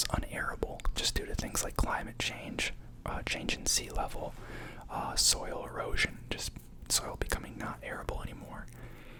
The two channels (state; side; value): identical; both; correlation 1.00